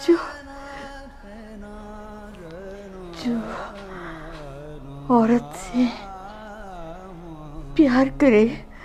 जो औरत से प्यार करे,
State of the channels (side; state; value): both; identical; correlation 1.00